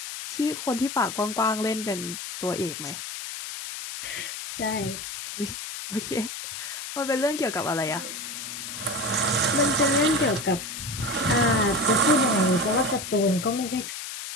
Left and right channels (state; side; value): noise; left; hiss, 8 dB below the sound